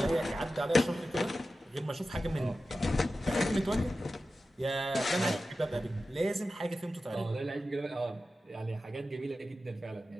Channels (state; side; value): normal; both; correlation 0.93